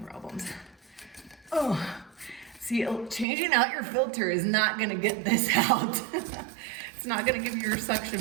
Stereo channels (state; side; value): drops out; left; at 3.2 s